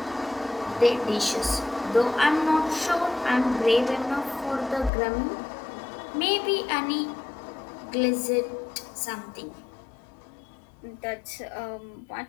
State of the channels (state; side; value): drops out; right; at 4.9 s